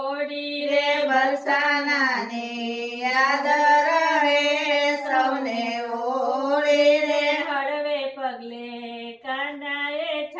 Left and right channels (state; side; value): identical; both; correlation 1.00